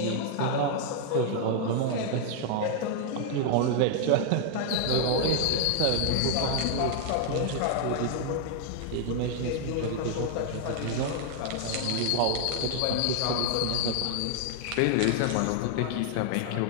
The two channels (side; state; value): both; different; correlation 0.00